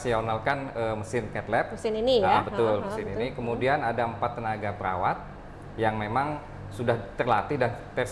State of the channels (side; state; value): both; identical; correlation 1.00